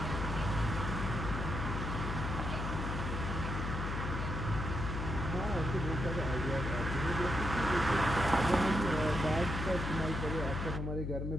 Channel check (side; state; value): left; noise; hum, 2 dB below the sound